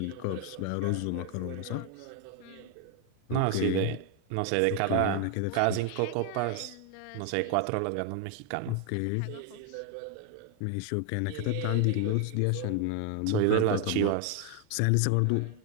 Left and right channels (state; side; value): different; both; correlation 0.00